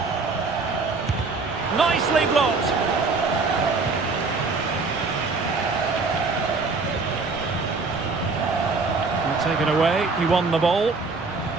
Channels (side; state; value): left; quieter; 4.1 dB